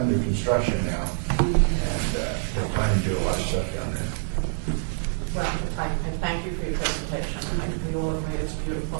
construction now, and they're planning to do a lot of stuff down there. Well, I thank you for your presentation. I think we all agree it's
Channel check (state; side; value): silent; left; 61 dB below the other